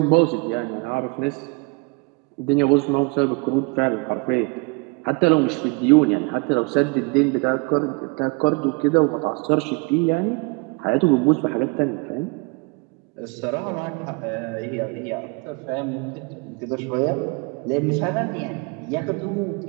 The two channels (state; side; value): quieter; left; 30.1 dB